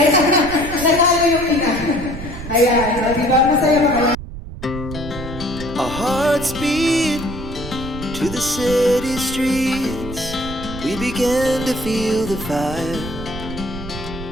nanalo yung ina. Ayan, di ba? Masaya ba kayo? Our hearts beat to the city streets. We began to feel the fire.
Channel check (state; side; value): noise; right; rumble, 10 dB below the sound